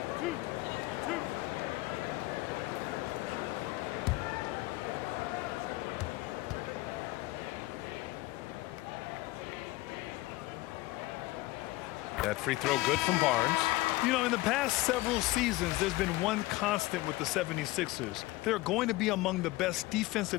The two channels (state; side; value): quieter; right; 19.4 dB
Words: That free throw good from Barnes. You know, in the past several seasons, there's been one constant with the 76ers. They're going to be among the best